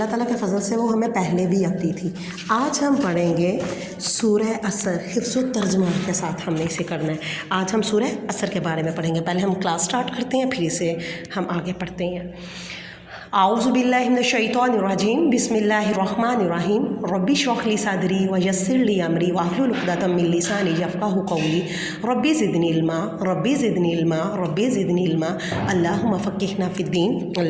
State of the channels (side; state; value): both; identical; correlation 1.00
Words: ताला के फ़ज़ल से वो हमें पहले भी आती थी। आज हम पढ़ेंगे सूरह असर, हिफ्ज़ व तर्जुमा के साथ हमने इसे करना है। आज हम सूरह असर के बारे में पढ़ेंगे। पहले हम क्लास स्टार्ट करते हैं, फिर इसे हम आगे पढ़ते हैं। आऊज़ु बिल्लाहि मिनश शैतानिर रजीम, बिस्मिल्लाहिर्रहमानिर्रहीम। रब्बि इश्रह ली सदरी व यस्सिर ली अमरी वाहलुल उक़दतम मिन लिसानी यफ़क़हू क़ौली। Rabbi ज़िदनी इल्मा, rabbi ज़िदनी इल्मा, rabbi ज़िदनी इल्मा। अल्लाहुम्मा फ़क़्क़िहना फ़िद्दीन,